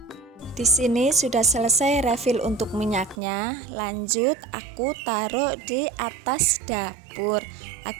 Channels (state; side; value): drops out; left; at 3.2 s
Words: Di sini sudah selesai refill untuk minyaknya. Lanjut, aku taruh di atas dapur